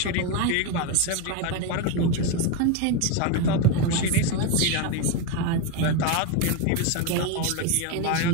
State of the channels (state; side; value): different; both; correlation 0.03